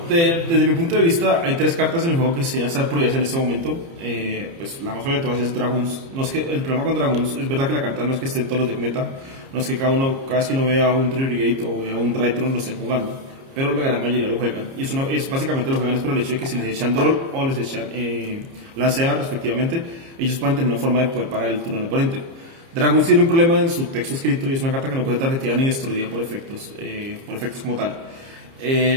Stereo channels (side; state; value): left; late; 30 ms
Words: Desde mi punto de vista, hay 3 cartas en el juego que sí están prohibidas en este momento. Pues la más obvia de todas es Dragoons. No es que, el problema con Dragoons es verdad que la carta no es que esté en todos los deck meta, no es que cada vez que uno vea un Trigate o vea un Drytron lo estén jugando, pero la gran mayoría lo juegan. Y eso básicamente lo juegan es por el hecho de que si les echan Droll o les echan Lancea respectivamente, ellos pueden tener una forma de poder parar el turno del oponente. Dragoons tiene un problema en su texto escrito y es una carta que no puede tarjetear ni destruida por efectos como tal.